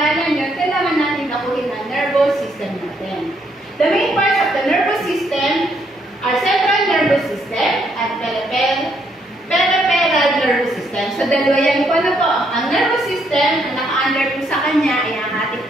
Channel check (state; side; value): normal; both; correlation 0.72